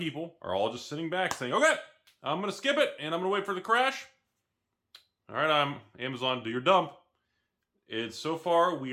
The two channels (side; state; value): both; identical; correlation 1.00